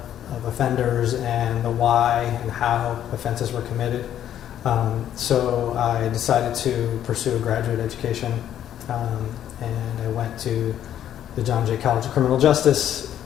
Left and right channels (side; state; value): right; quieter; 10.7 dB